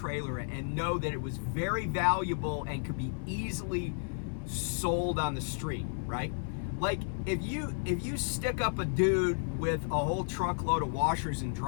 and know that it was very valuable and could be easily sold on the street, right? Like, if you stick up a dude with a whole truckload of washers and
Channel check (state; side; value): silent; right; 56 dB below the other